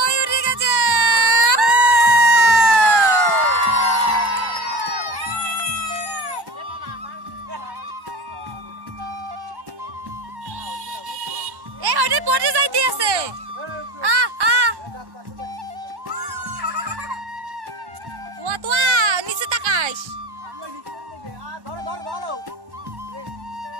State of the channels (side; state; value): left; late; 1.1 ms